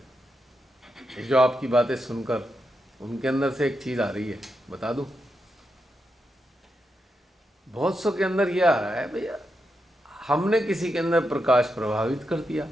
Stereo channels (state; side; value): normal; both; correlation 0.85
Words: जो आपकी बातें सुनकर उनके अंदर से एक चीज़ आ रही है, बता दूं? बहुत सौ के अंदर ये आ रहा है, भैया हमने किसी के अंदर प्रकाश प्रभावित कर दिया